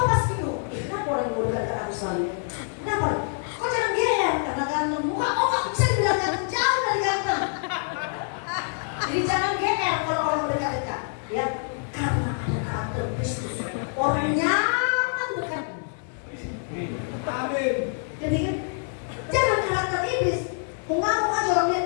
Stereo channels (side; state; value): right; silent; 60 dB below the other